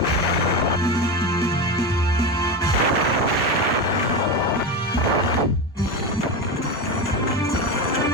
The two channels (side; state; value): both; normal; correlation 0.19